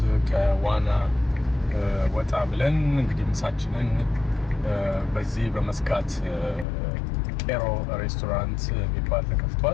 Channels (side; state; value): right; drops out; at 6.7 s